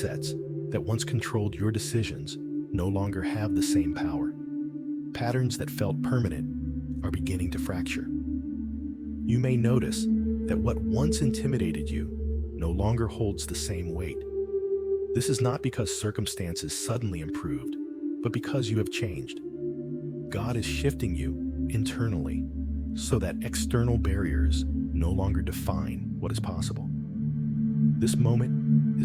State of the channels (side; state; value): both; identical; correlation 1.00